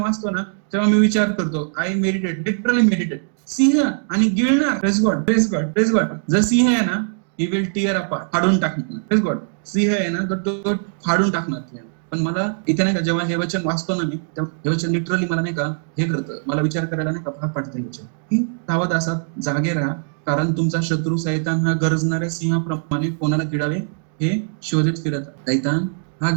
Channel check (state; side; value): silent; left; digital silence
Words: ना तेव्हा मी विचार करतो, आय मेडिटेट, लिटरली मेडिटेट. सिंह आणि गिळणार. Praise God, praise God, praise God. जर सिंह आहे ना, ही विल टिअर अपार्ट, फाडून टाकणार. Press God. सिंह आहे ना तर तो फाडून टाकणार. पण मला इथे नाही का जेव्हा हे वचन वाचतो ना मी, हे वचन लिटरली मला नाही का हे करतं, मला विचार करायला नाही का भाग पाडतं. वचन की सावध असा, जागे राहा, कारण तुमचा शत्रू सैतान हा गरजणाऱ्या सिंहाप्रमाणे कोणाला गिळावे हे शोधित फिरत. सैतान हा